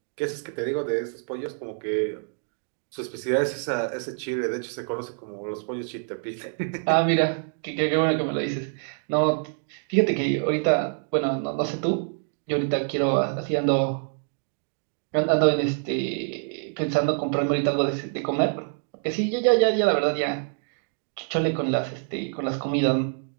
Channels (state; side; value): silent; left; 59 dB below the other